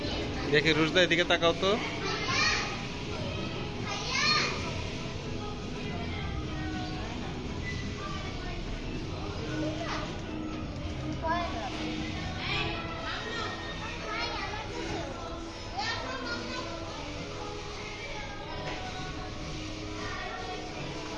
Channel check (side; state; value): both; identical; correlation 1.00